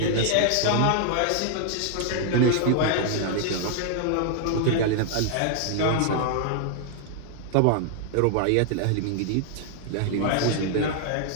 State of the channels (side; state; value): both; different; correlation 0.00